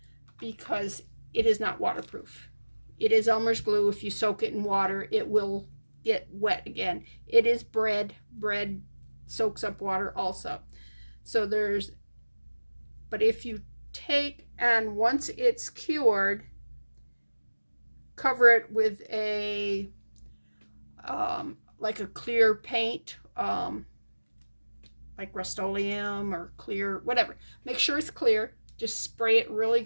because it is not waterproof. It is Elmer's glue. If you soak it in water, it will get wet again. It is bread. Bread soaks up water also. So but if you take and once it's cured, cover it with a like a clear paint, like Rust-Oleum or clear, whatever. Make sure it's clear. Just spray it really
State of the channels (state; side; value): inverted; both; correlation -1.00